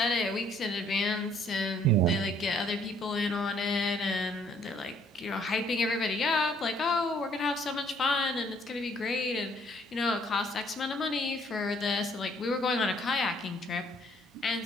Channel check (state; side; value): normal; both; correlation 0.63